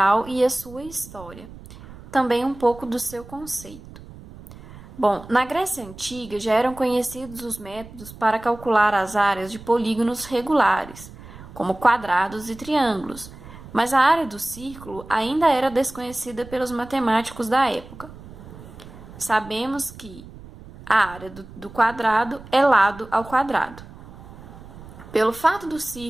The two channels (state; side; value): noise; right; rumble, 17 dB below the sound